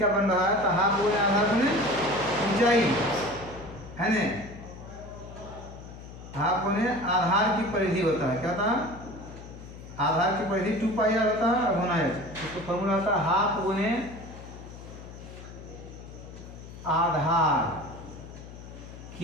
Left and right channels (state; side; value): noise; left; hum, 15 dB below the sound